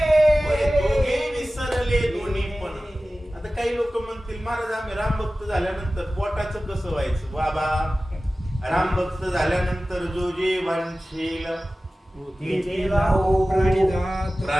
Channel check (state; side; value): normal; both; correlation 0.96